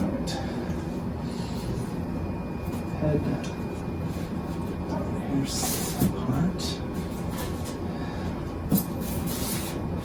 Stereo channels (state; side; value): identical; both; correlation 1.00